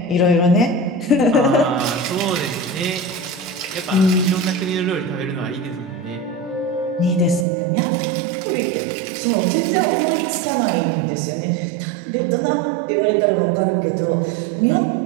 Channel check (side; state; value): left; drops out; at 7.5 s